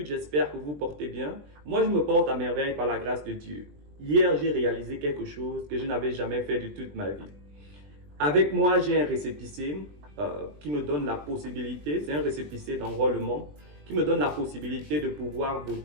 j'espère que vous portez bien. Moi, je me porte à merveille par la grâce de Dieu. Hier, j'ai réalisé quelque chose que je n'avais jamais fait de toute ma vie. Avec moi, j'ai un récépissé qui me donne la possibilité, c'est un récépissé d'enrôlement, qui me donne la possibilité de pouvoir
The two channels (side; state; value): left; late; 20 ms